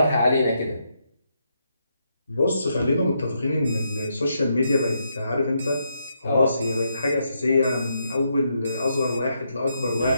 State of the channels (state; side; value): inverted; both; correlation -0.79